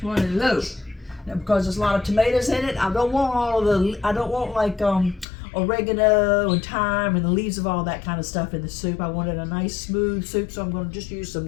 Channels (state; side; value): drops out; right; at 5.2 s